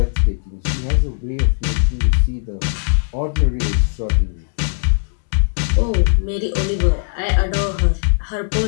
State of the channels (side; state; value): right; silent; digital silence